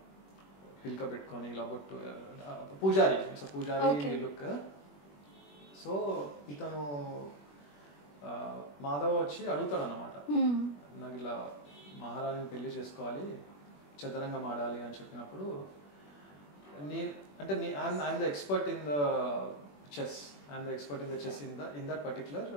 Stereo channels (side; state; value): right; late; 21 ms